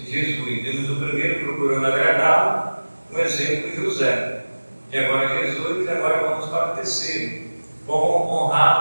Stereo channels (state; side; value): inverted; both; correlation -1.00